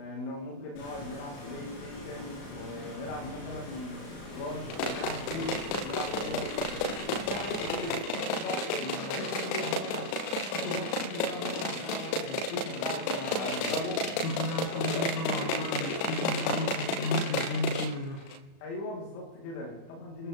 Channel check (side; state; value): right; late; 36 ms